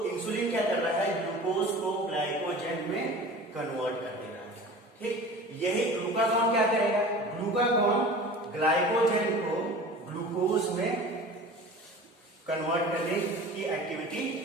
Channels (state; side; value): normal; both; correlation 0.39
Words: इंसुलिन क्या कर रहा है, ग्लूकोज को ग्लाइकोजन में कन्वर्ट कर दे रहा है। ठीक, यही ग्लूकागॉन क्या करेगा, ग्लूकागॉन ग्लाइकोजन को ग्लूकोज में कन्वर्ट करने की एक्टिविटी